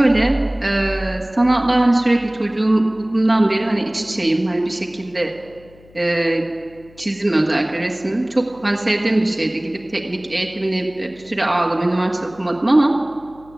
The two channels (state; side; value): noise; left; hum, 26 dB below the sound